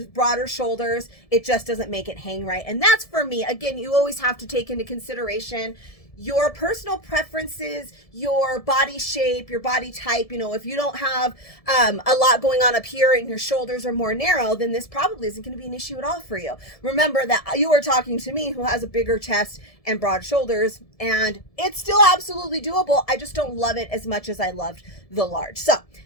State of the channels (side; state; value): right; late; 1.7 ms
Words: broader shoulders, it just doesn't make it hang right. And that's for me. Again, you always have to take into consideration your personal preferences, your body shape, your body type. You know, if you don't have a lot going on up here and your shoulders are more narrow, then this probably isn't going to be an issue at all for you. Remember that you are talking to me who has a bigger chest and broad shoulders, and it's still absolutely doable. I just don't love it as much as I loved the large. So